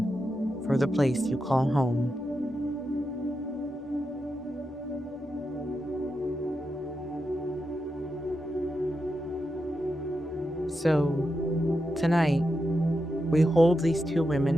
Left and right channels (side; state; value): both; normal; correlation 0.87